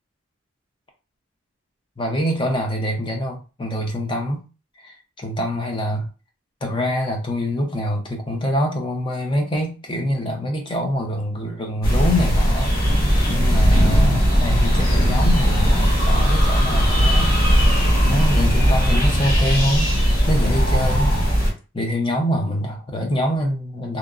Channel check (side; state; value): both; normal; correlation 0.83